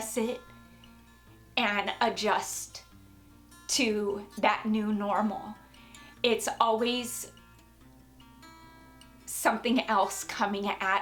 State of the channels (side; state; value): both; identical; correlation 1.00